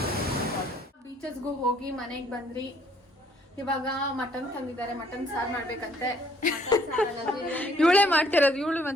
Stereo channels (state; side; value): normal; both; correlation 0.63